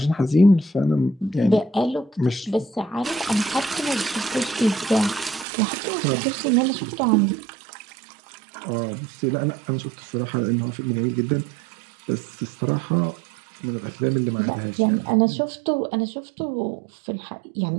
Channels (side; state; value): left; drops out; at 5.5 s